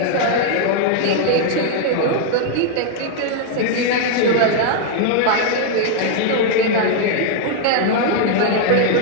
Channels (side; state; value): both; different; correlation 0.00